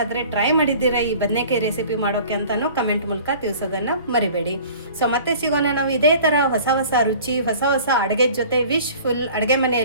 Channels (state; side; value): inverted; both; correlation -0.46